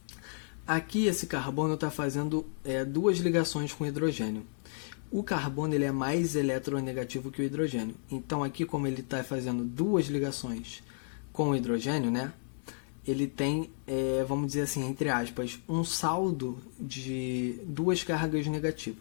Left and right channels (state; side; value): silent; right; digital silence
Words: Aqui esse carbono está fazendo duas ligações com hidrogênio. O carbono ele é mais eletronegativo que o hidrogênio. Então aqui, como ele está fazendo duas ligações com o hidrogênio, né? Ele tem, vamos dizer assim, entre aspas, um saldo de duas cargas